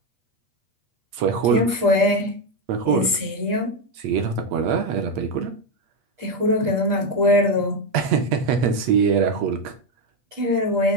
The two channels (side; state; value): left; late; 8.4 ms